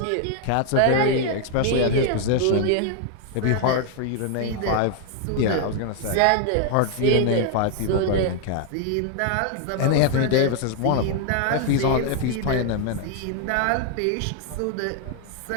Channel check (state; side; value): different; both; correlation 0.00